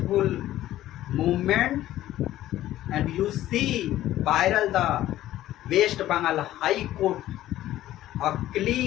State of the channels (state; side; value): quieter; right; 14.0 dB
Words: movement. And you see viral the West Bengal High Court, a